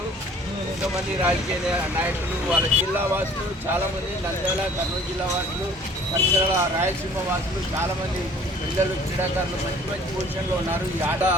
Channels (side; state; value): both; normal; correlation 0.52